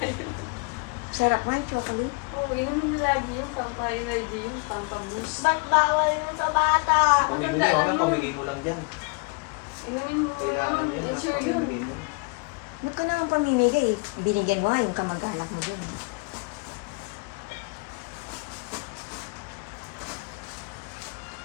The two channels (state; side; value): quieter; right; 30.5 dB